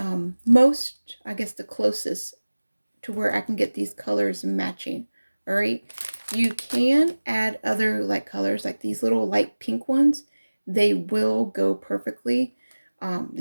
most, I guess, the closest to where I can get these colors matching. All right, you can add other like colors, like these little light pink ones. They will go perfectly.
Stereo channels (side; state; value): both; inverted; correlation -1.00